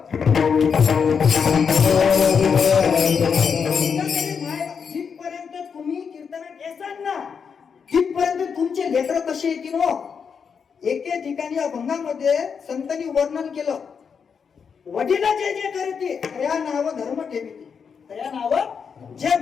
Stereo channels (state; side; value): quieter; right; 6.4 dB